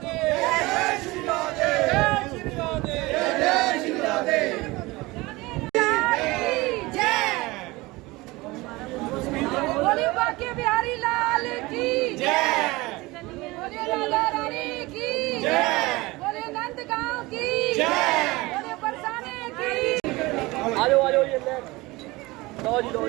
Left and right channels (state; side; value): quieter; left; 21.7 dB